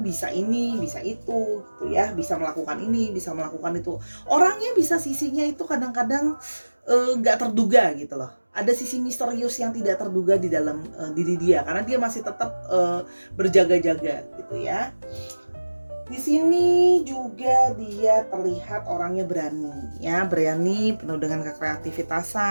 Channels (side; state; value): both; inverted; correlation -1.00